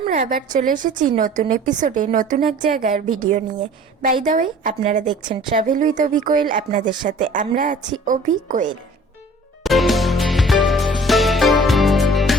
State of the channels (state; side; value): normal; both; correlation 0.48